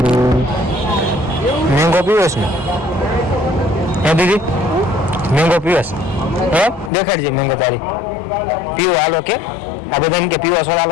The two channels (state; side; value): drops out; right; at 6.9 s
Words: મેંગો પીવસ ને? હે દીદી મેંગો પીવસ? હે દેખાડજે મેંગો તારી. પીવો હાલો કે? આ બધા એમ કે પીવો સોડા